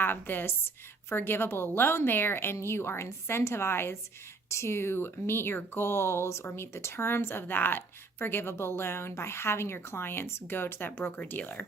this forgivable loan there and you are incentivized to meet your goals or meet the terms of that forgivable loan by having your clients go to that broker-dealer.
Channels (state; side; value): quieter; left; 3.9 dB